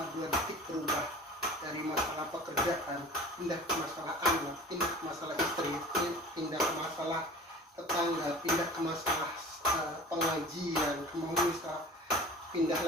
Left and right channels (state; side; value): normal; both; correlation 0.41